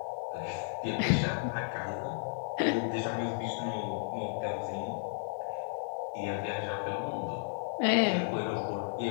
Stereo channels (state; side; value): silent; right; digital silence